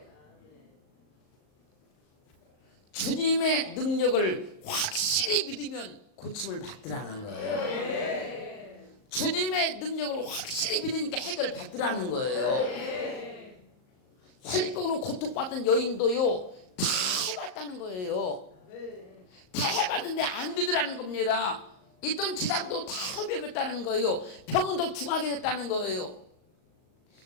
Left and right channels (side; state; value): right; late; 38 ms